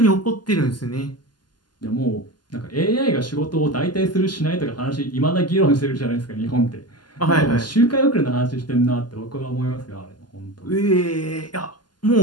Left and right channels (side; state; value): right; late; 0.71 ms